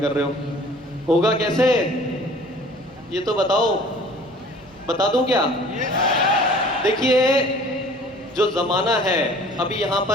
कर रहे हो। होगा कैसे ये तो बताओ, बता दूं क्या? देखिए, जो ज़माना है अभी यहाँ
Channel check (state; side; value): normal; both; correlation 0.49